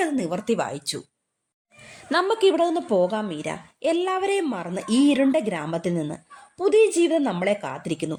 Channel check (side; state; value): both; identical; correlation 1.00